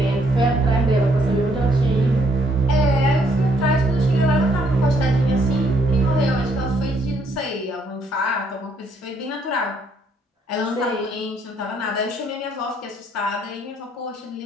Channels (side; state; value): both; normal; correlation 0.70